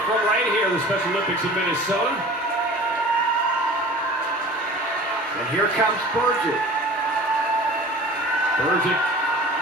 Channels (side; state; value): both; normal; correlation 0.41